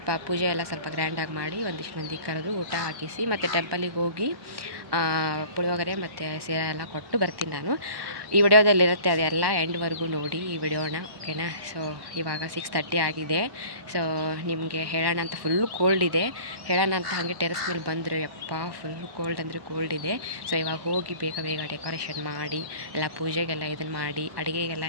ಪೂಜೆ ಎಲ್ಲ ಸ್ವಲ್ಪ ಗ್ರ್ಯಾಂಡಾಗಿ ಮಾಡಿ ಒಂದಿಷ್ಟು ಮಂದಿ ಕರೆದು ಊಟ ಹಾಕಿಸಿ ಮತ್ತು ಟೆಂಪಲಿಗೆ ಹೋಗಿ ಪುಳಿಯೋಗರೆ ಮತ್ತು ಸೀರೆ ಎಲ್ಲ ಕೊಟ್ಟು ಬರ್ತೀನಿ ನಾನು. ಈ ವಿಡಿಯೋದಲ್ಲಿರುತ್ತೆ, ಅದೆಲ್ಲ ಎಂಡ್ವರೆಗೂ ನೋಡಿ ಈ ವಿಡಿಯೋನ, ಓಕೆನಾ? ಸೊ ಇವಾಗ 6:30 ಆಗಿದೆ. ಸೊ ನಿಮಗೆ ಹೇಳೋಣ ಅಂತ ಫುಲ್ಲು ಕೋಲ್ಡ್ ಇದೆ. ಹೇಳೋಣ ಅಂತ ಹಾಗೆ ಟೆರೆಸ್ ಮೇಲೆ ಬಂದರೆ ಯಪ್ಪ ಫುಲ್ಲು ಕೋಲ್ಡ್ ಅಂದರೆ ಕೋಲ್ಡ್ ಇದೆ. ಸೊ ಇವಾಗ ಹೋಗಿ ಬೇಗ ಬೇಗ ಡೆಕೋರೇಷನ್ ಮಾಡಿ ಎಲ್ಲ ಪೂಜೆಗೆಲ್ಲ ಇದನ್ನು ಮಾಡಿ ಅಡುಗೆಗೆಲ್ಲ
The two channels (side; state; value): left; late; 1.1 ms